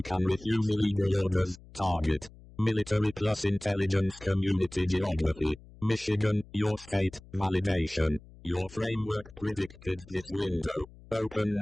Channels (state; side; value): noise; left; hum, 21 dB below the sound